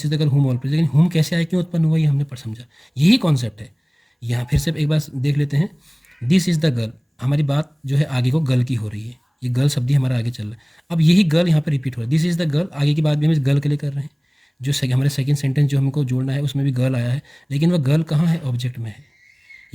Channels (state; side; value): identical; both; correlation 1.00